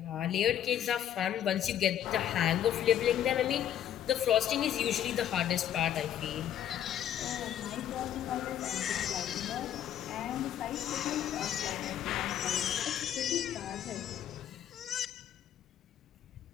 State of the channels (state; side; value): quieter; right; 10.5 dB